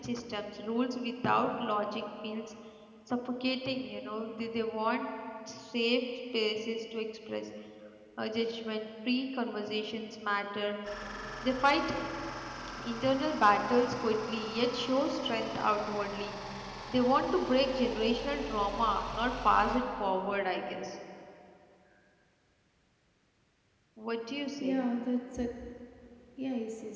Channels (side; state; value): both; identical; correlation 1.00